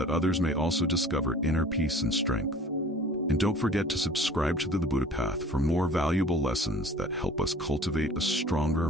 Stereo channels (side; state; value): both; normal; correlation 0.47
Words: others may also discover inner peace and strength. And don't forget to subscribe to the Buddha Path for more valuable lessons that help us cultivate a stronger,